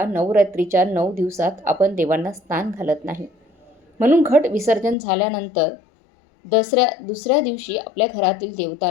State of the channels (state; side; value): drops out; right; at 5.0 s